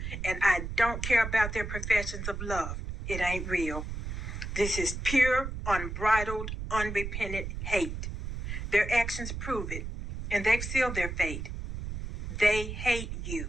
And I don't care about their professions of love. It ain't real. This is pure, unbridled, unrepentant hate. Their actions prove it, and they've sealed their fate. They hate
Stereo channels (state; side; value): noise; right; rumble, 6 dB below the sound